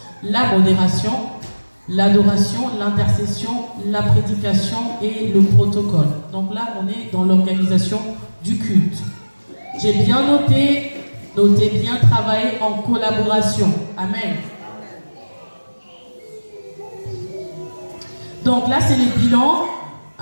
La modération, l'adoration, l'intercession, la prédication et le protocole. Donc là, on est dans l'organisation du culte. J'ai bien noté bien travailler en collaboration. Amen. Donc là, c'est les bilans.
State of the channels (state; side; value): inverted; both; correlation -1.00